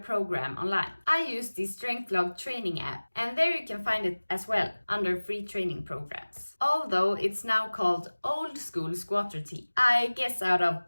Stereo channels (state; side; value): inverted; both; correlation -1.00